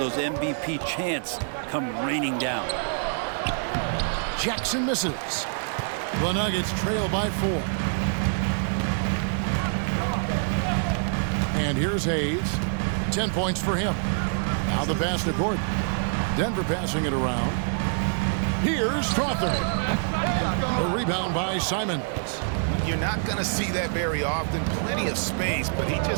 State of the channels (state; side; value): silent; left; digital silence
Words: MVP chants come raining down. Jackson misses. The Nuggets trail by 4. And here's Hayes. 10 points for him. Now the pass to Gordon. Denver passing it around. Here's Strawther. A rebound by Simons. You're not going to see that very often. Plenty of space, but he